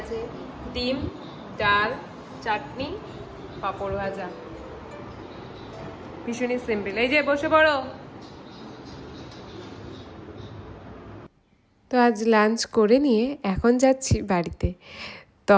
ডিম, ডাল, চাটনি, পাঁপড় ভাজা। ভীষণই সিম্পল। এই যে বসে পড়ো। তো আজ লাঞ্চ করে নিয়ে এখন যাচ্ছি বাড়িতে।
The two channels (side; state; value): both; identical; correlation 1.00